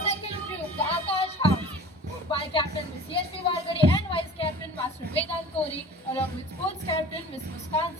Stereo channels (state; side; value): normal; both; correlation 0.42